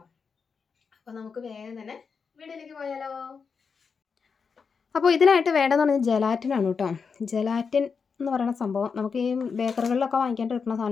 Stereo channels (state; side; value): quieter; right; 5.6 dB